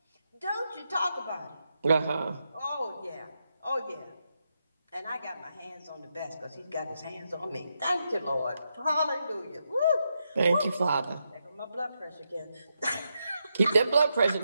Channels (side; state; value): both; inverted; correlation -0.84